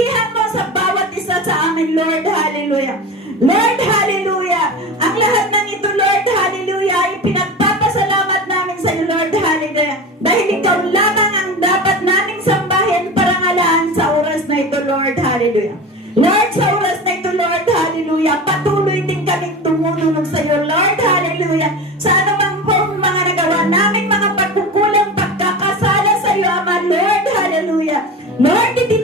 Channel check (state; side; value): normal; both; correlation 0.30